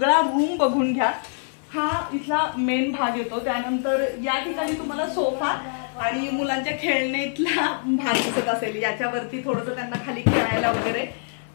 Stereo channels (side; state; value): right; silent; 56 dB below the other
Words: रूम बघून घ्या. हा इथला मेन भाग येतो. त्यानंतर या ठिकाणी तुम्हाला सोफा आणि मुलांच्या खेळण्यातला भाग दिसत असेल. याच्यावरती थोडंसं त्यांना खाली खेळायला वगैरे